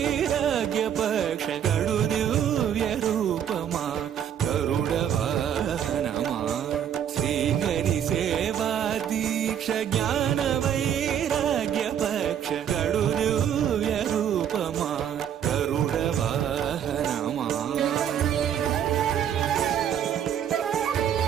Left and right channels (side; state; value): left; quieter; 9.3 dB